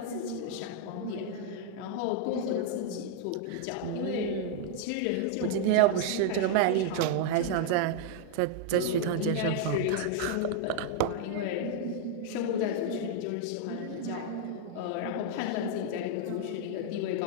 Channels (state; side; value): different; both; correlation -0.01